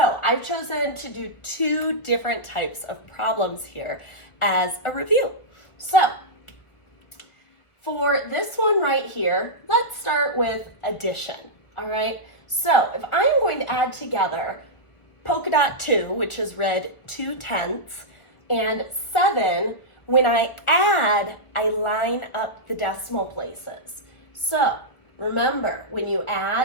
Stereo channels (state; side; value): late; right; 1.4 ms